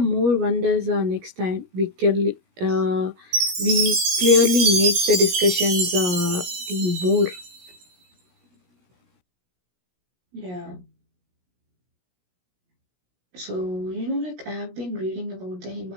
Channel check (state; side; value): late; left; 17 ms